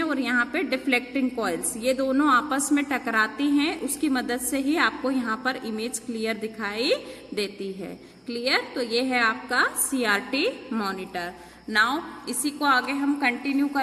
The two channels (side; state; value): both; identical; correlation 1.00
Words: और यहाँ पे डिफ्लेक्टिंग कॉइल्स, ये दोनों आपस में टकराती हैं, उसकी मदद से ही आपको यहाँ पर इमेज क्लियर दिखाई देती है। क्लियर, तो ये है आपका CRT मॉनिटर। नाउ इसी को आगे हम कंटिन्यू